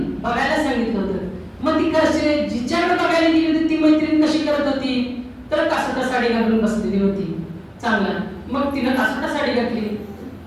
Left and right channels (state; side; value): identical; both; correlation 1.00